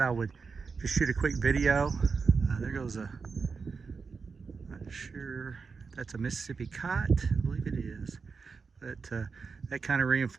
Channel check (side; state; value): left; quieter; 5.0 dB